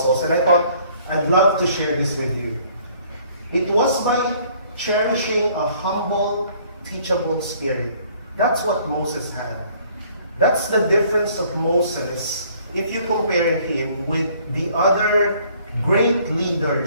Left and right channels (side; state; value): both; inverted; correlation -0.59